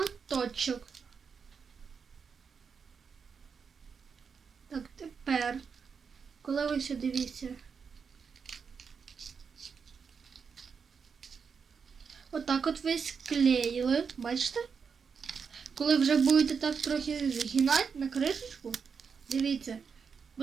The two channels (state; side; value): quieter; left; 6.0 dB